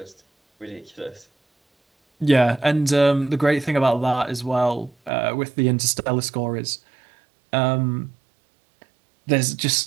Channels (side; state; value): left; drops out; at 5.1 s